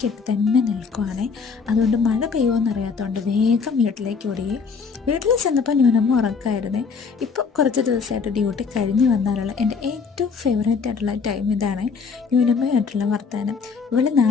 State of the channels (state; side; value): quieter; right; 5.3 dB